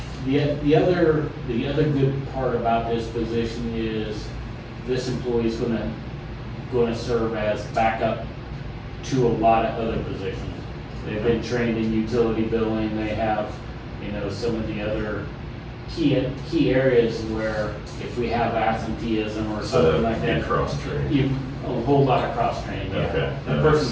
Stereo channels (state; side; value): identical; both; correlation 1.00